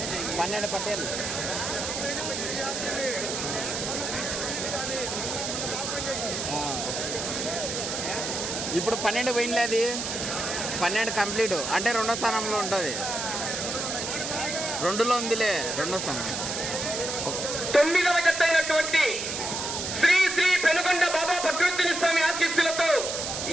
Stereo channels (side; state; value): right; noise; hiss, 3 dB below the sound